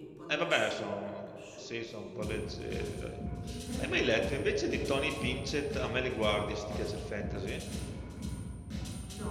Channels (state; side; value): identical; both; correlation 1.00